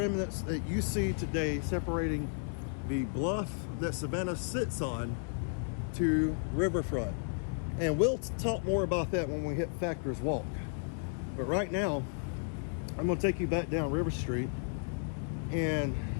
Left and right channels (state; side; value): silent; right; digital silence